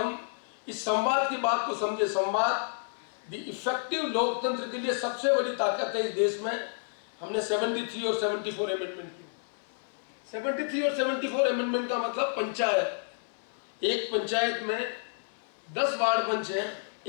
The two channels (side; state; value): right; silent; 57 dB below the other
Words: इस संवाद की बात को समझे। संवाद द इफेक्टिव लोकतंत्र के लिए सबसे बड़ी ताकत है इस देश में। हमने 73 और 74 अमेंडमेंट की। 73 और 74 अमेंडमेंट का मतलब पंचायत, एक पंचायत में 10 वार्ड पंच हैं,